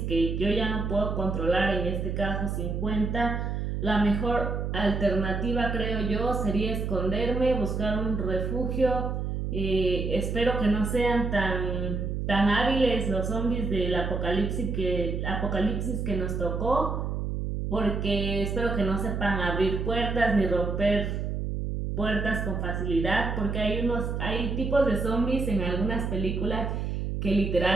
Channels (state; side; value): noise; right; hum, 2 dB below the sound